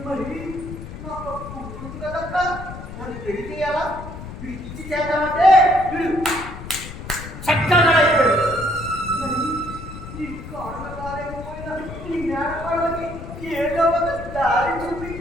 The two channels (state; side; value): noise; left; rumble, 11 dB below the sound